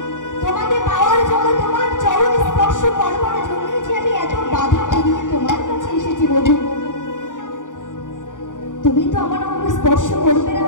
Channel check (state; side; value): late; right; 0.87 ms